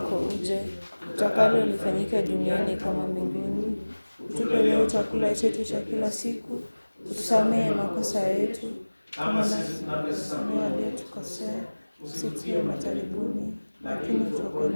uje, utakalo lifanyike duniani kama mbinguni. Utupe leo chakula chetu cha kila siku, utusamehe makosa yetu kama nasi tunavyosamehe waliotukosea, usitie majaribuni, lakini utuokoe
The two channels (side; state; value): both; inverted; correlation -1.00